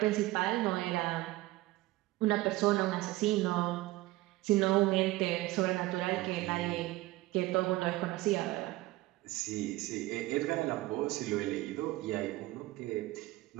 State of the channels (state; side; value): quieter; left; 18.3 dB